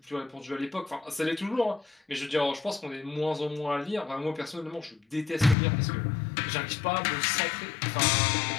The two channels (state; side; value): drops out; right; at 5.6 s